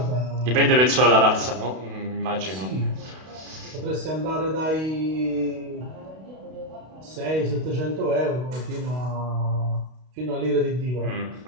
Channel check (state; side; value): late; left; 32 ms